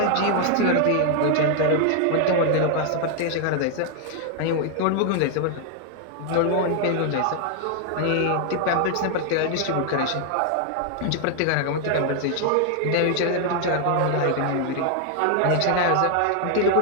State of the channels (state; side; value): different; both; correlation 0.00